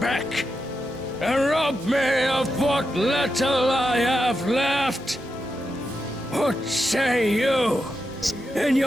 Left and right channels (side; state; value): left; noise; hum, 27 dB below the sound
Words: and rob me of what little I have left. What say you in